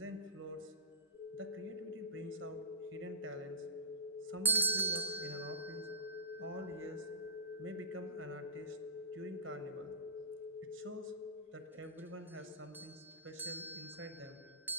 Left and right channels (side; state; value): both; normal; correlation -0.18